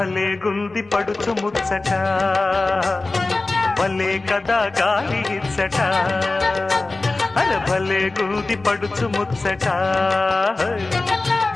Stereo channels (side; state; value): right; quieter; 3.3 dB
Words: గుంది పడుచు ముచ్చట భలే కదా గాలి ఇచ్చట అరే భలే గుంది పడుచు ముచ్చట